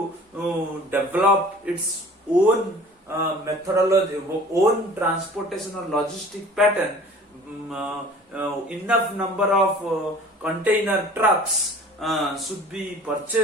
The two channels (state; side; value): normal; both; correlation 0.46